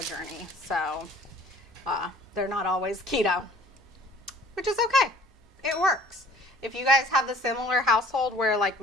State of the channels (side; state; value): both; normal; correlation 0.51